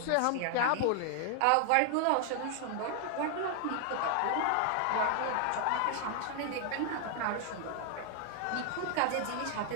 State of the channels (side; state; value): both; different; correlation 0.00